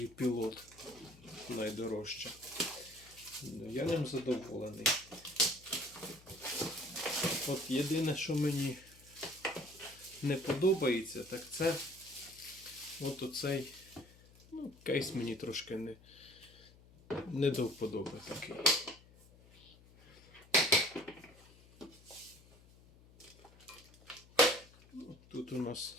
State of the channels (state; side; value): noise; left; hum, 24 dB below the sound